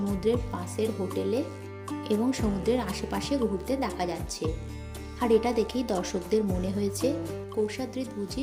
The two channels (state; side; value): identical; both; correlation 1.00